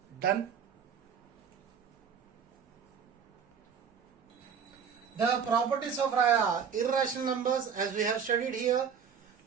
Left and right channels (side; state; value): left; quieter; 7.0 dB